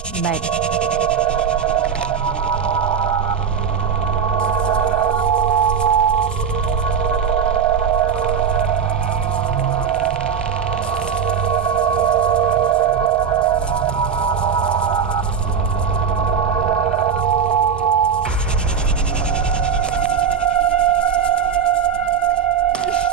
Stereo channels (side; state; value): left; quieter; 7.0 dB